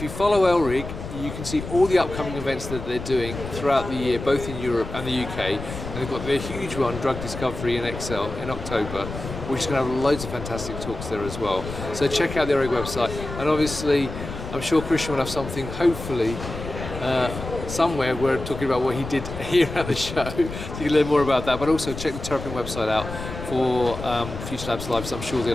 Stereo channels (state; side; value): noise; left; rumble, 9 dB below the sound